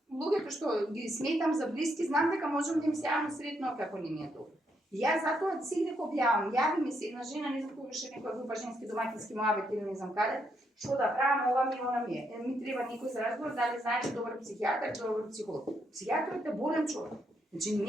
луѓето што ги сметам за блиски, знам дека можам да им се јавам сретно како не ми е добро. Јас затоа сега го објавам, јави ми се една жена, не знам кога ше некоја група женски домакински муабет или не знам каде, што да правам, ова ми, она ми е. Ми треба некој за разговор, дали знаеш добар психијатар, добар психолог. Психијатрот е болен човек. Значи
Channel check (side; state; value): both; normal; correlation 0.77